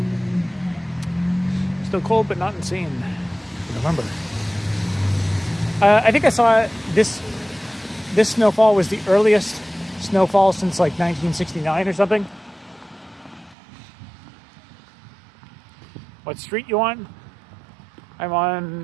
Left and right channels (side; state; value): left; drops out; at 13.6 s